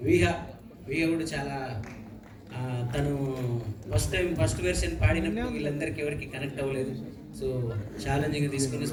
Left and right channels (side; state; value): both; identical; correlation 1.00